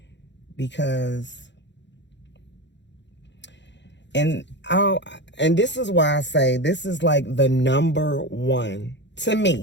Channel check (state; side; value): late; right; 0.52 ms